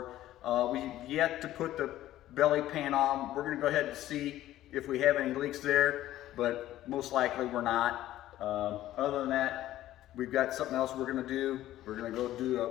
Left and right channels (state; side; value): quieter; right; 14.0 dB